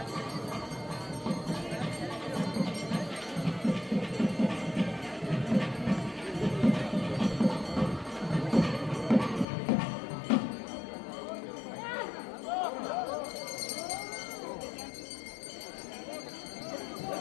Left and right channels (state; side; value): drops out; right; at 9.5 s